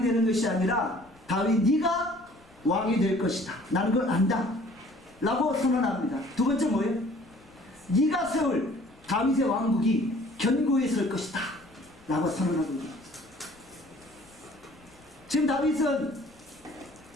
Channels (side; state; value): left; noise; rumble, 29 dB below the sound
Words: 되는 것이 아니라 다윗 네가 왕이 될 것이다. 나는 그걸 안다 라고 선언합니다. 두 번째 뭐예요? 네가 세울 다윗의 왕국이 견고히 설 것이다 라고 선언하고 있습니다. 지금 다윗은